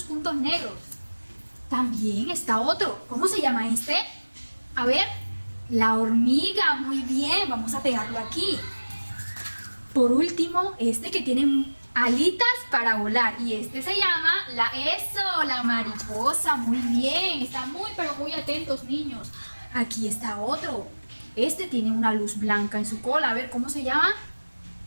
puntos negros. También está otro. ¿Cómo se llama este? A ver, la hormiga. Muy bien, vamos a pegarlo aquí. Por último, este que tiene alitas para volar. Y este se llama la mariposa. Muy bien, están muy, pero muy atentos, niños. Aquí está otro. Este tiene una luz blanca en su cola. A ver, ¿cómo se llama?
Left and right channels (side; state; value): both; inverted; correlation -1.00